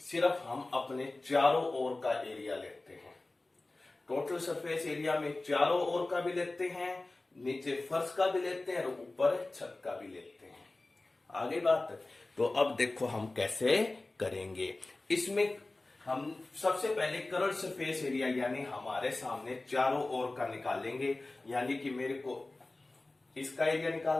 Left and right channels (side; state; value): right; quieter; 3.0 dB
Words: सिर्फ हम अपने चारों ओर का एरिया लेते हैं, टोटल सरफेस एरिया में चारों ओर का भी लेते हैं, नीचे फर्श का भी लेते हैं और ऊपर छत का भी लेते हैं। आगे बात, तो अब देखो हम कैसे करेंगे। इसमें हम सबसे पहले कर्व्ड सरफेस एरिया यानी हमारे सामने चारों ओर का निकालेंगे। यानी कि मेरे को इसका एरिया